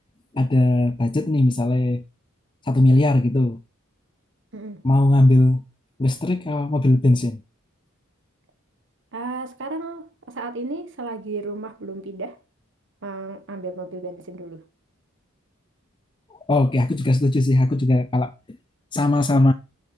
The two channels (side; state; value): both; normal; correlation 0.88